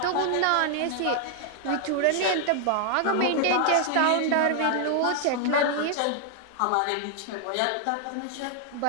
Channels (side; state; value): both; different; correlation 0.00